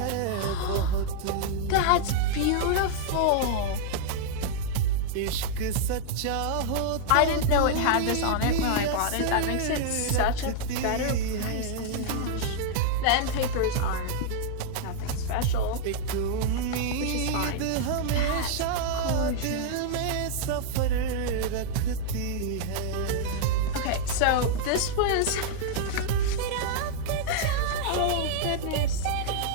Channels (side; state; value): both; different; correlation -0.01